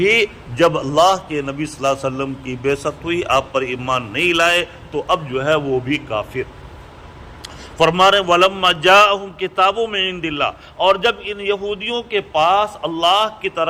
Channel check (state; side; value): identical; both; correlation 1.00